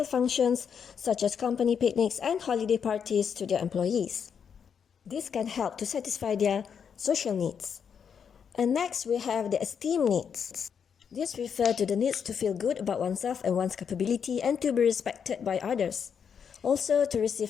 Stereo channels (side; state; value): right; quieter; 7.2 dB